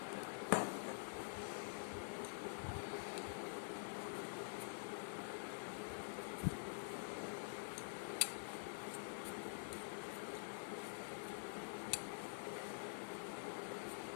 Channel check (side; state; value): right; silent; digital silence